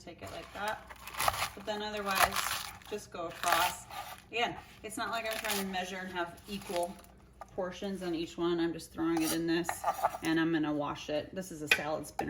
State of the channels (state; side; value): identical; both; correlation 1.00